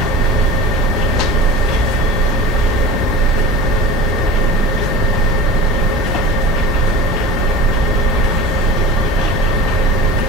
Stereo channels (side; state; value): both; normal; correlation 0.36